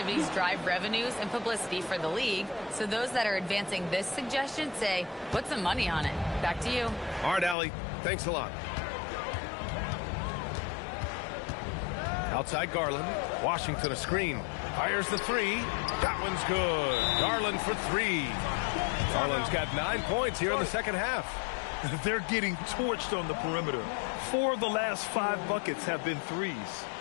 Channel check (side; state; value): right; drops out; at 7.6 s